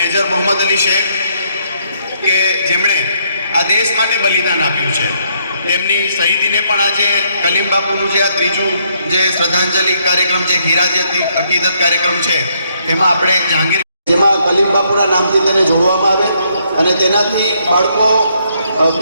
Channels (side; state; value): both; inverted; correlation -0.72